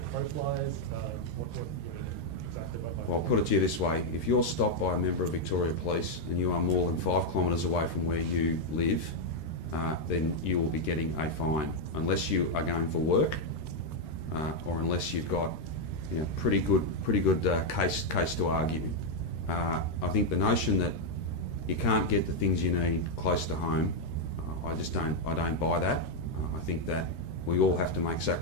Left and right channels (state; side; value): late; right; 13 ms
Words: crow flies? What do you mean exactly by 5 kilometres? Well, I'll put it to you this way. If you're stopped by a member of Victoria Police and you are more than 5 kilometres away from where you live, then you will be getting a fine, unless you are going for work, or unless you've got pretty good case to argue. I think the notion that you can't get the things you need close to home, I don't buy that. I think that we all have to make